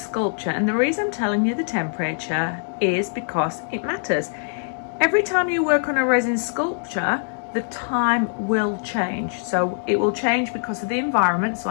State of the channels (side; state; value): right; silent; digital silence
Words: and the reason I'm telling you the temperature is because it matters. Every time you work on a resin sculpture, the time will change. So it will change because of the environment. So